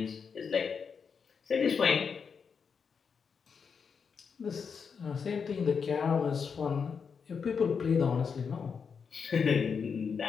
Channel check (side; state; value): right; quieter; 6.1 dB